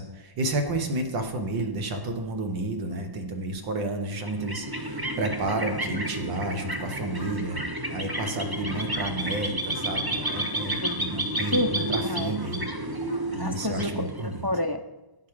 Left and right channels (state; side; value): late; left; 1.0 ms